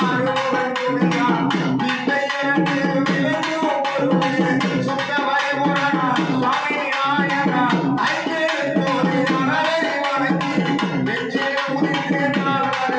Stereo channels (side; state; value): both; identical; correlation 1.00